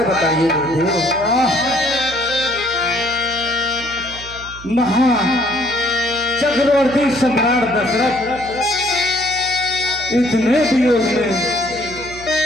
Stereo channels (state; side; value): noise; right; hum, 16 dB below the sound